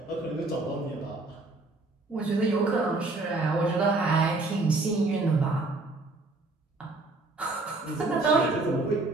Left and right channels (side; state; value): left; quieter; 3.2 dB